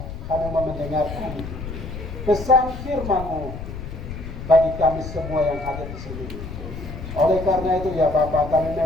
kami mendengarkan pesan firman-Mu bagi kami semua yang ada di sini. Oleh karena itu ya Bapa, kami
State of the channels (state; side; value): noise; left; rumble, 9 dB below the sound